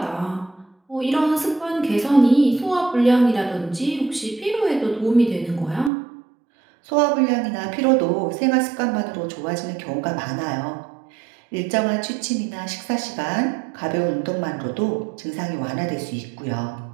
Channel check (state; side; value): drops out; left; at 5.9 s